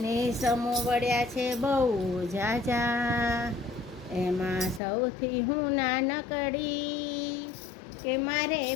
સમો વળ્યા છે બહુ જાજા એમાં સૌથી હું નાનકડી કે મારે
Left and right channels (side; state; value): right; drops out; at 4.8 s